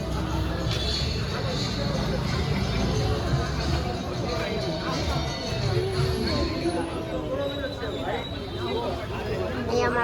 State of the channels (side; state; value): both; identical; correlation 1.00